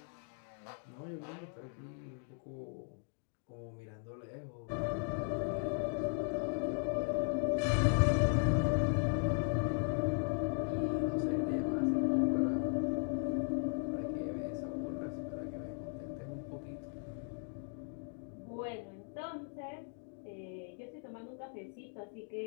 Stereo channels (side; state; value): right; silent; 53 dB below the other